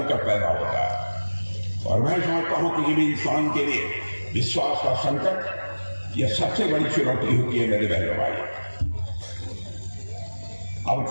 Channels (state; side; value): inverted; both; correlation -1.00